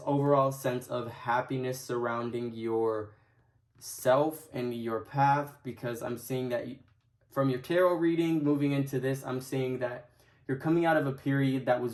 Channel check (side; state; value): both; identical; correlation 1.00